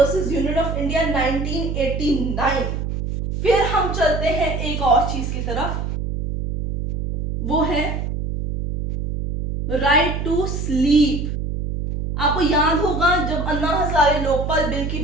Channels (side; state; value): right; noise; hum, 2 dB below the sound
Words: Union of India 1989। फिर हम चलते हैं एक और चीज की तरफ, वो है राइट टू स्लीप। आपको याद होगा जब अन्ना हजारे लोकपाल बिल की